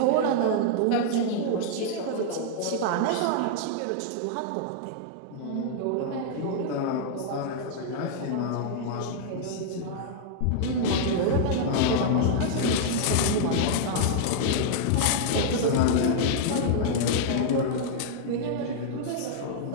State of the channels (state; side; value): different; both; correlation -0.01